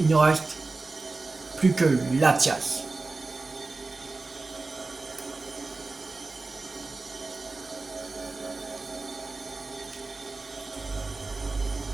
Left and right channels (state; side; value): quieter; left; 3.6 dB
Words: ne reste plus que Latias.